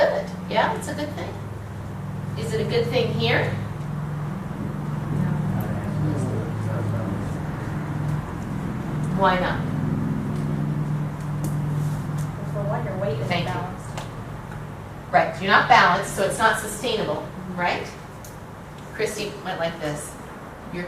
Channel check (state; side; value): identical; both; correlation 1.00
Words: Yeah, it's a good thing. Is it a good thing here? Why not? For one, your weight is Thank you. balanced. Right, you're not balanced, so it's not sustainable, right? Christy went like this. You're